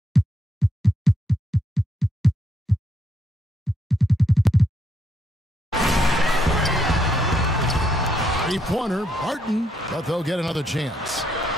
Three-pointer, Barton, but they'll get another chance.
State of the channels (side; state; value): both; normal; correlation 0.76